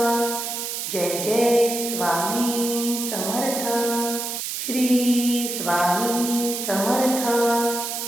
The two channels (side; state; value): right; noise; hiss, 4 dB below the sound